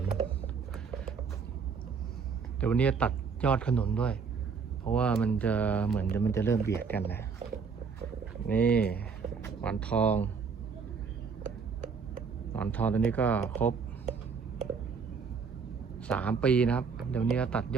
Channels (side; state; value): left; quieter; 5.6 dB